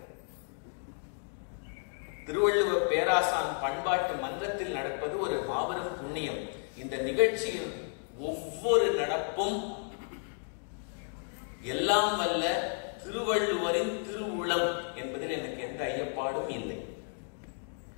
திருவள்ளுவர் பேராசான் பண்பாட்டு மன்றத்தில் நடப்பது ஒரு மாபெரும் புண்ணியம். இந்த நிகழ்ச்சியில் ஒவ்வொரு நடப்பும் எல்லாம் வல்ல திருவள்ளுவரின் திருவுளம் என்பதில் எனக்கு எந்த ஐயப்பாடும் இல்லை.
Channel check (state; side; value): silent; right; 56 dB below the other